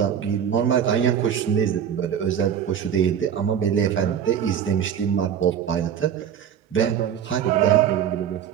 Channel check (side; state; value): left; quieter; 8.7 dB